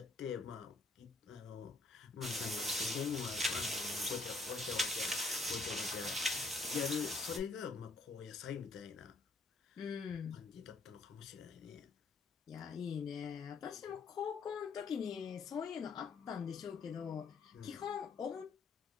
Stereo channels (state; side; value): quieter; right; 3.4 dB